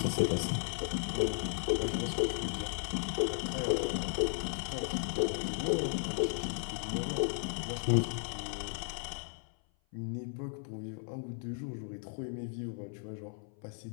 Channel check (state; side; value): silent; right; 54 dB below the other